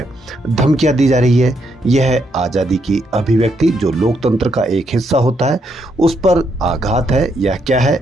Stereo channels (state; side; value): normal; both; correlation 0.76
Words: धमकियां दी जा रही है। यह है आज़ादी की अभिव्यक्ति जो लोकतंत्र का एक हिस्सा होता है, उस पर आघात है या क्या